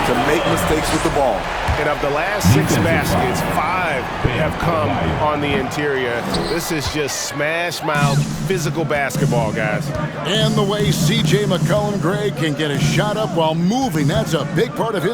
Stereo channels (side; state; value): both; identical; correlation 1.00